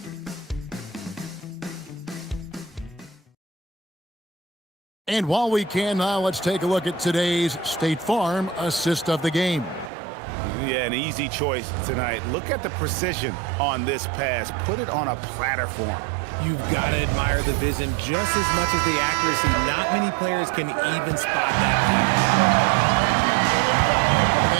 And while we can now, let's take a look at today's State Farm assist of the game. Yeah, an easy choice tonight. Look at the precision on this pass. Put it on a platter form. You've got to admire the vision just as much as the accuracy. Not many players can even spot that pass.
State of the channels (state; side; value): drops out; left; at 9.9 s